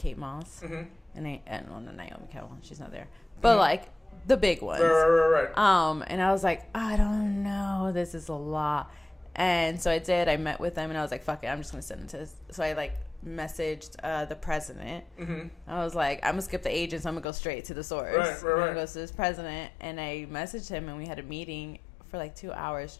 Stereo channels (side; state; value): right; drops out; at 17.2 s